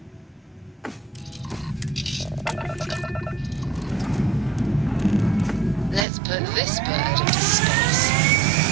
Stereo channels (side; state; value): left; drops out; at 6.1 s